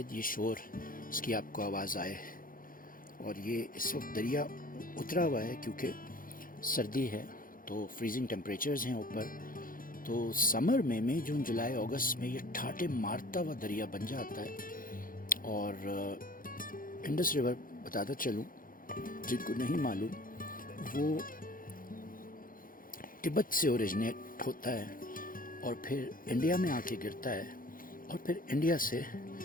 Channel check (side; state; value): right; late; 0.40 ms